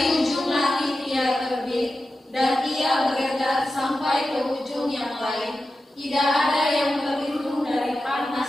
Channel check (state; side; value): normal; both; correlation 0.92